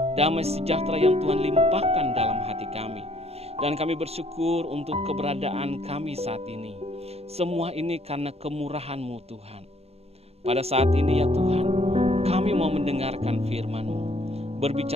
damai sejahtera yang Tuhan limpahkan dalam hati kami. Dan kami bersyukur untuk keberadaan kami saat ini. Semua ini karena kemurahan-Mu Tuhan. Pada saat ini ya Tuhan, kami mau mendengarkan firman-Mu.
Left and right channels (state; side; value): late; left; 0.30 ms